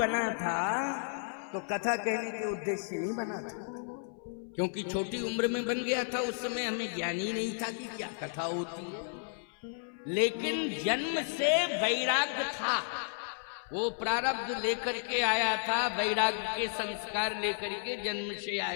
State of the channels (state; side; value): silent; right; 56 dB below the other